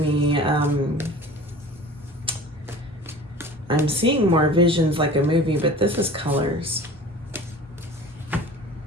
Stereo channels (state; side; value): normal; both; correlation 0.41